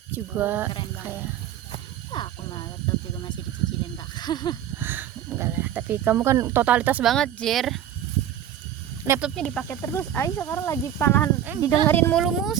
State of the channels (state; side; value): quieter; left; 10.6 dB